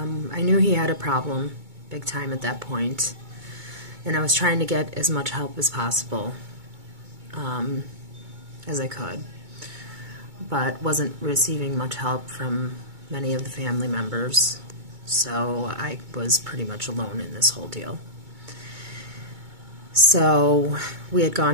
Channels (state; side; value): late; left; 2.2 ms